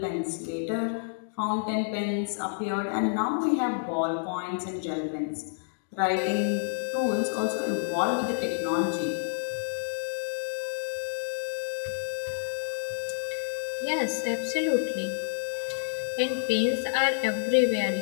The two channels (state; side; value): silent; right; digital silence